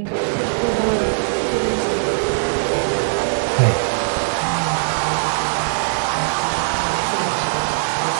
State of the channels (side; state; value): left; silent; digital silence